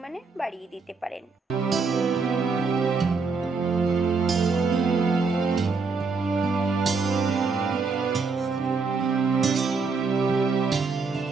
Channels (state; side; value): quieter; left; 4.5 dB